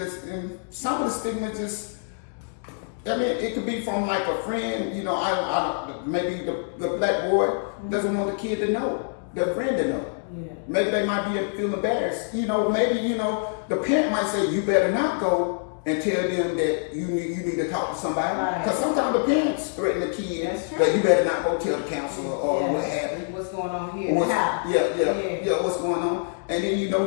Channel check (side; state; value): right; silent; digital silence